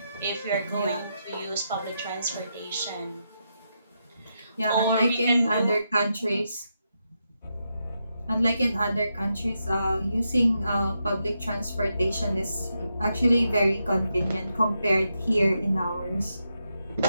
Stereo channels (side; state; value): both; inverted; correlation -0.84